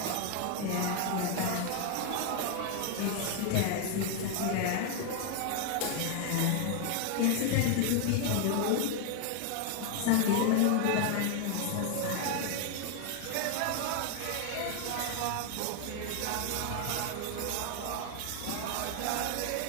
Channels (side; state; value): both; different; correlation 0.01